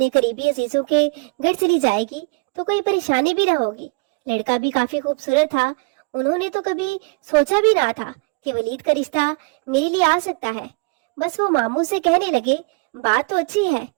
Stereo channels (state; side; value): quieter; left; 31.6 dB